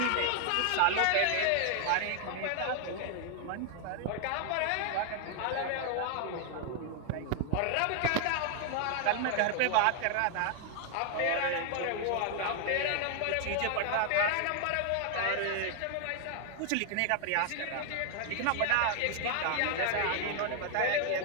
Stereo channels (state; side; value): different; both; correlation 0.00